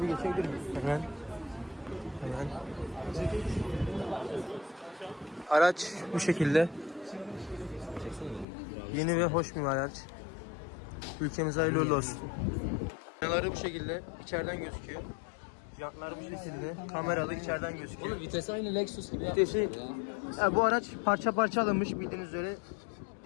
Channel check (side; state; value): right; drops out; at 8.5 s